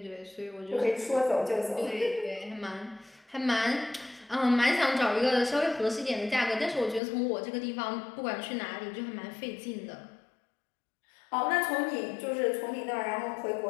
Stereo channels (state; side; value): drops out; right; at 7.0 s